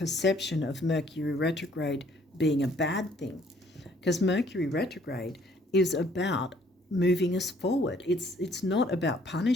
of Mercury retrograde being a bad thing, because Mercury retrograde is about moving us forward. It's not about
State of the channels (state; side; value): normal; both; correlation 0.61